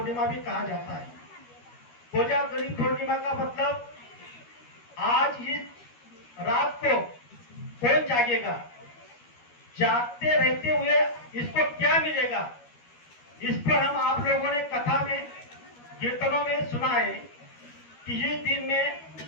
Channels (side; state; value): right; late; 13 ms